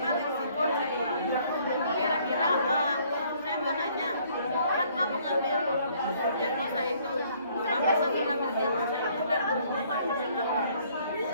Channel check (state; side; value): inverted; both; correlation -0.62